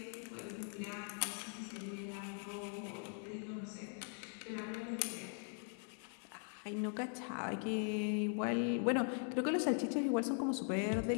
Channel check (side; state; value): right; silent; 50 dB below the other